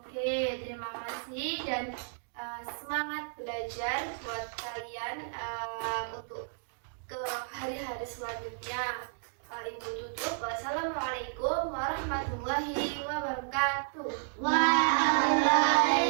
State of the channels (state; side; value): silent; left; digital silence